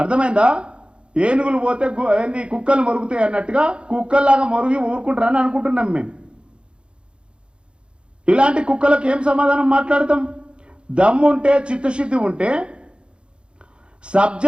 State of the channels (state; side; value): late; left; 0.055 ms